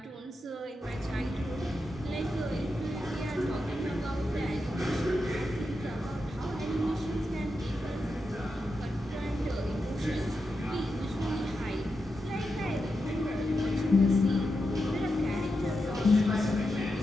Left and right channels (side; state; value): both; normal; correlation 0.88